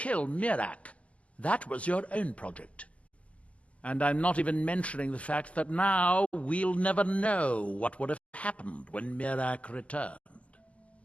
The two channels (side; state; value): right; late; 0.063 ms